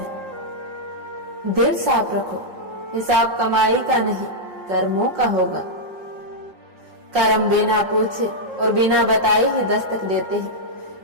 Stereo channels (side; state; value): left; late; 5.5 ms